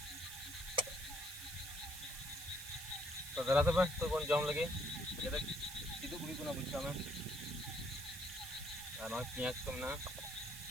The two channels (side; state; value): right; noise; hiss, 10 dB below the sound